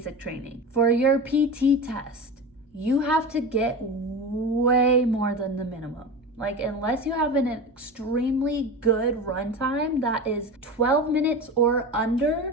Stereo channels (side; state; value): both; normal; correlation 0.27